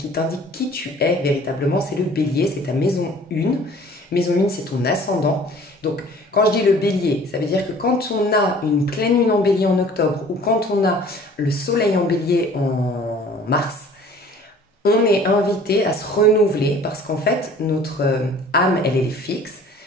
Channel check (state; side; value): normal; both; correlation 0.50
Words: qui tu es véritablement, c'est le bélier, c'est ta maison 1. Maison 1, c'est ton ascendant. Donc quand je dis le bélier, ça veut dire que quand on a une pleine lune en bélier en octobre ou quand on a le soleil en bélier en mars, on est invité à se renouveler parce qu'en fait, notre âme, elle est fixe.